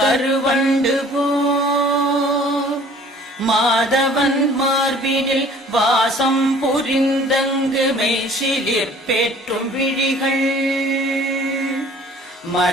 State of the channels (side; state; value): both; normal; correlation 0.52